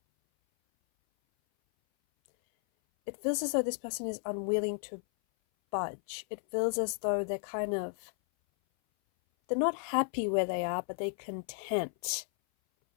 it feels as though this person is unwilling to budge. It feels as though they're not happy where they are, but they're content.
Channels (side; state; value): right; silent; 55 dB below the other